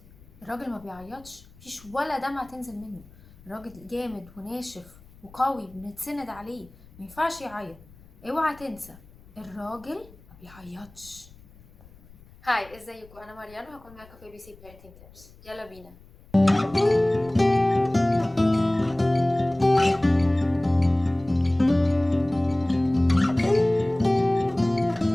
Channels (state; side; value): noise; left; rumble, 24 dB below the sound